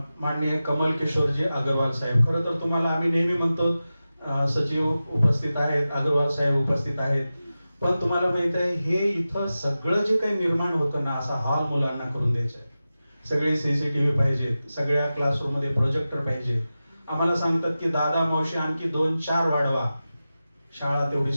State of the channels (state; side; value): inverted; both; correlation -0.94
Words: माननीय कमल किशोरजी अग्रवाल साहेब. खरं तर तुम्हाला आम्ही नेहमी म्हणतो सचिव उपस्थित आहेत, अग्रवाल साहेब उपस्थित आहेत, पण तुम्हाला माहित आहे हे इथं सगळं जे काही निर्माण होतं ना, असा हॉल मुलांना करून द्यायचा आहे. सगळे CCTV पाहिजेत, सगळ्या क्लासरूम मध्ये प्रोजेक्टर पाहिजे. आम्हाला सांगतात की दादा मावशी आणखी 2-4 वाढवा, शाळा तेवढी